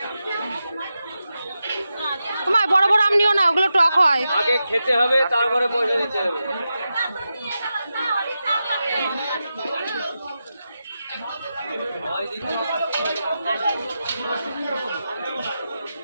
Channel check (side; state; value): both; inverted; correlation -0.90